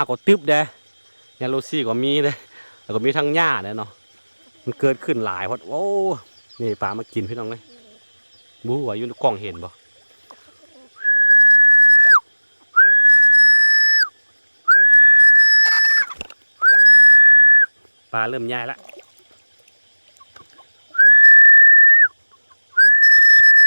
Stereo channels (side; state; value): both; inverted; correlation -1.00